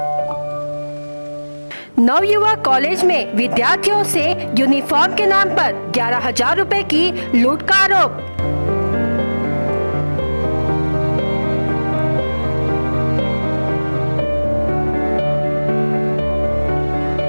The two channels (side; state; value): both; inverted; correlation -1.00